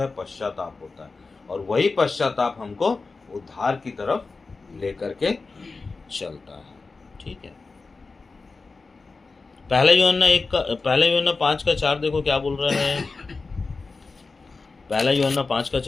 पश्चाताप होता है, और वही पश्चाताप हमको उद्धार की तरफ लेकर के चलता है। ठीक है। पहला यूहन्ना 5:4 देखो क्या बोल रहा है। पहला यूहन्ना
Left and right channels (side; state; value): right; quieter; 4.1 dB